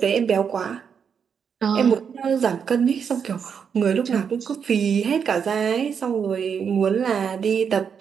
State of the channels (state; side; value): quieter; left; 7.0 dB